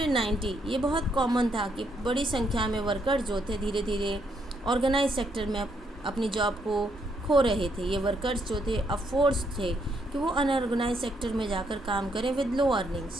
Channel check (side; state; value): both; normal; correlation 0.74